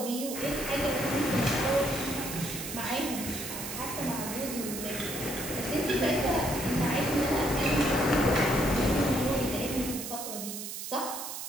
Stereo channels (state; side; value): noise; right; hiss, 7 dB below the sound